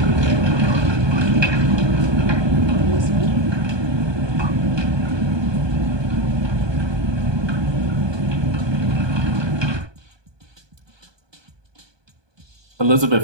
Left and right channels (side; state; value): left; late; 1.2 ms